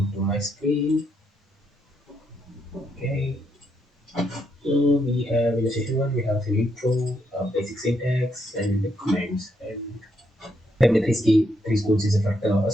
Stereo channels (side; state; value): both; normal; correlation 0.77